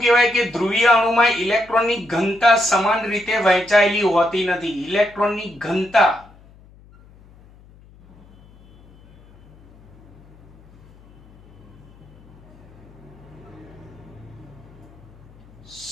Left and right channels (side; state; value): left; noise; hum, 25 dB below the sound